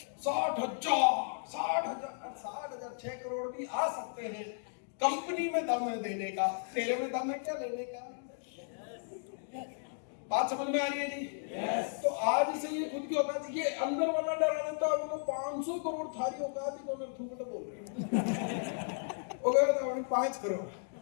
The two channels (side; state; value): right; silent; digital silence